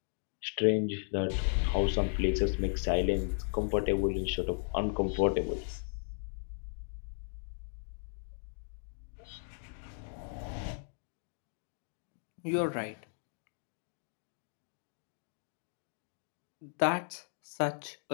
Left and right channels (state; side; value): silent; right; digital silence